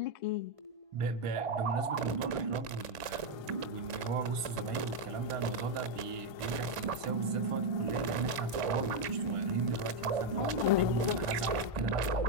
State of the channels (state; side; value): late; left; 1.5 ms